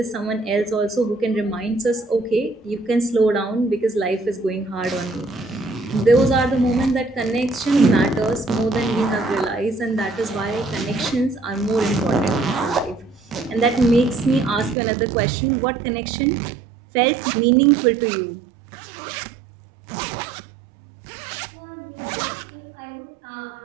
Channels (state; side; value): drops out; left; at 14.8 s